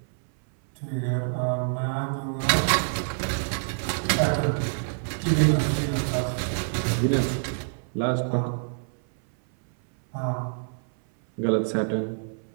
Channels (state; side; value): silent; left; 59 dB below the other